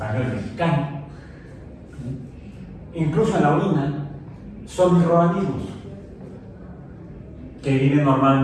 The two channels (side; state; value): both; identical; correlation 1.00